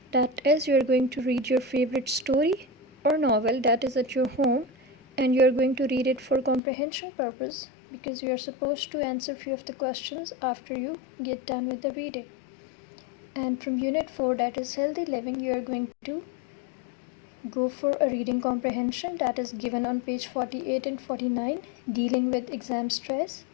That is, you are going to read your favorite story or novel that is at your home, and you are going to read it for comprehension purpose because you are supposed to answer few of the questions after you get done with the reading. And from unit 4, that is healthy living, you are going to go for a reading comprehension that is given on page 48 and 49, dealing with exam stress,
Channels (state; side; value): drops out; right; at 6.6 s